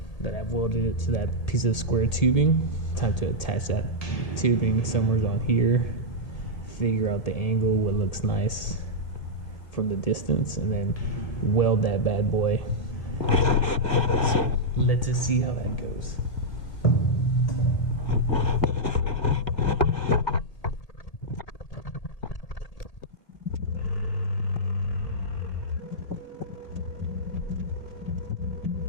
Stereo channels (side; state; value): right; late; 1.7 ms